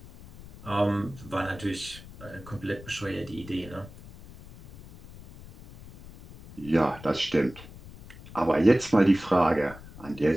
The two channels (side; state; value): left; noise; rumble, 18 dB below the sound